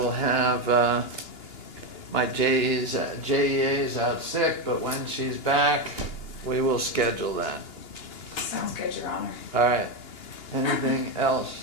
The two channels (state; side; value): late; right; 2.8 ms